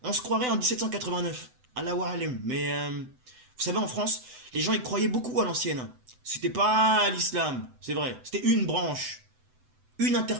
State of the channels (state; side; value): late; left; 7.9 ms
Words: on se croirait en 1789, Allahu alim. Mais vous savez, en France, les gens y croyaient beaucoup à l'ancienne. C'était pas l'islam, c'est vrai. C'était une branche, une